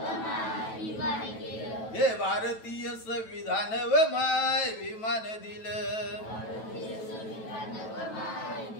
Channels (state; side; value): late; right; 9.1 ms